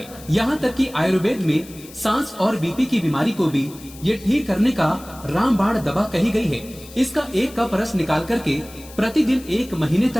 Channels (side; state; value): left; noise; hiss, 19 dB below the sound